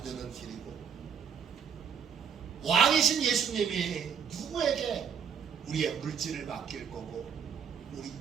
길이고, 왕이신 예수님이 누구에게 우리의 물질을 맡길 거고, 우리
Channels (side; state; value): left; quieter; 7.2 dB